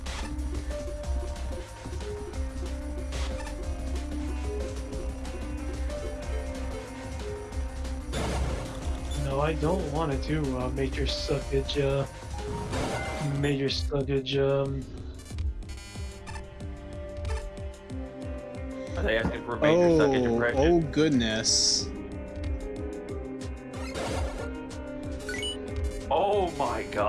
No, I don't want to do major suckage. Major suckage. Are they asking for a major suckage impression? Oh goodness. Oh my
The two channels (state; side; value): identical; both; correlation 1.00